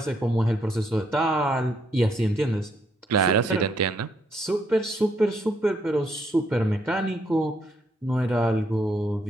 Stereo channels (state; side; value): normal; both; correlation 0.73